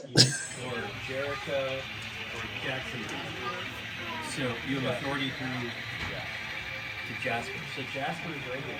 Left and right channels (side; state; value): both; identical; correlation 1.00